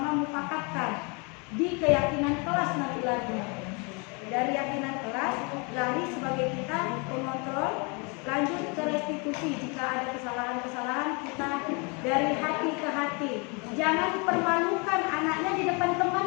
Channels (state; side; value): quieter; right; 31.9 dB